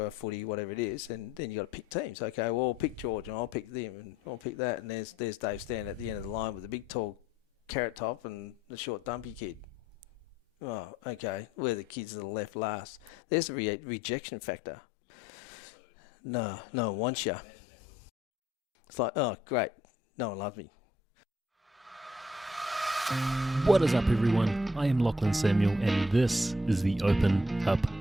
footy, whatever it is, and then you got to pick teams. Okay, well, I'll pick George, and I'll pick them, and I'll pick that, and there's Dave standing at the end of the line with the big tall carrot top and the short dumpy kid. Oh, okay, we're the kids that are left last. There's the rejection factor. No one wants you. It's like, oh, great, no one loves me. What is up, everyone? I am Lachlan Samuel, and this is the Open Up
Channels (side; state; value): both; normal; correlation 0.67